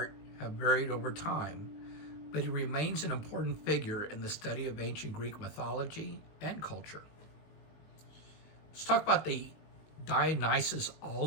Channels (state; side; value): late; right; 19 ms